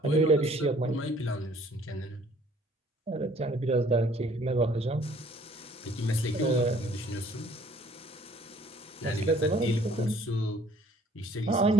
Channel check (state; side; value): normal; both; correlation 0.57